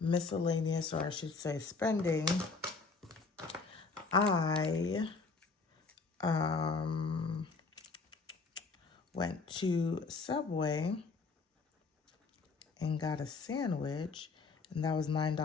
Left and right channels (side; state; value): right; quieter; 4.3 dB